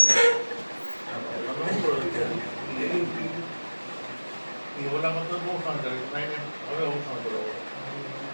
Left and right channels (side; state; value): both; inverted; correlation -1.00